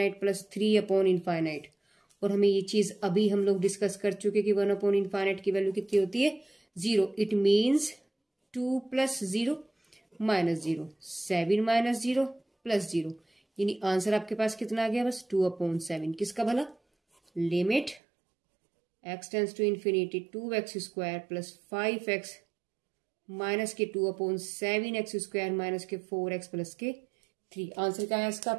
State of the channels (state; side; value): drops out; left; at 18.0 s